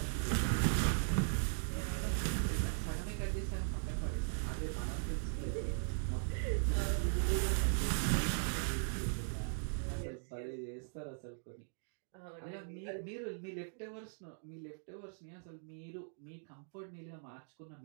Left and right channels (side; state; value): left; silent; digital silence